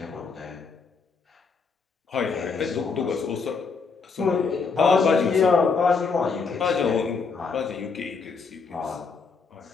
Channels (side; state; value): right; quieter; 4.9 dB